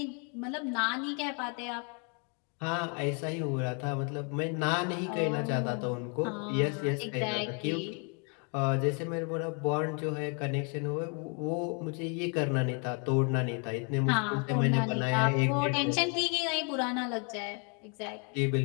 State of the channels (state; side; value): quieter; right; 37.4 dB